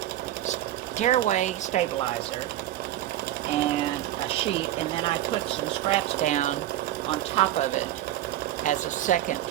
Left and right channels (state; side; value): quieter; left; 13.6 dB